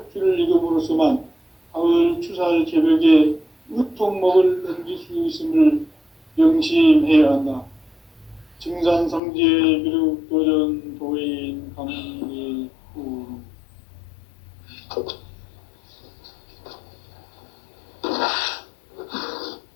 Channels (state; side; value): drops out; right; at 9.2 s